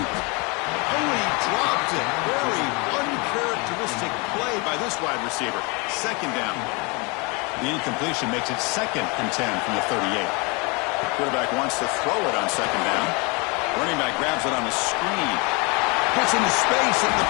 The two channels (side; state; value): right; quieter; 29.5 dB